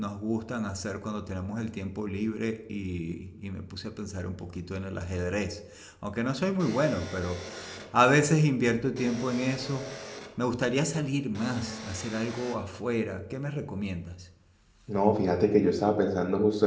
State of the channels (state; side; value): identical; both; correlation 1.00